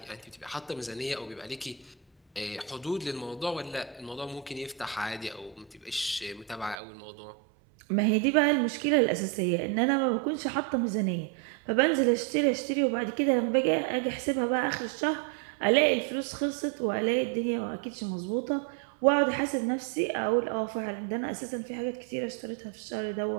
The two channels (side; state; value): left; drops out; at 6.8 s